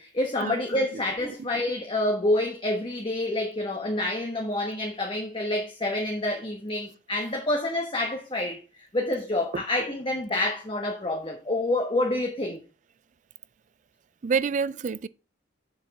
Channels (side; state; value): both; normal; correlation 0.35